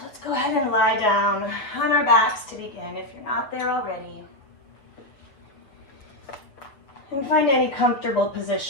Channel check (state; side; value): late; right; 7.2 ms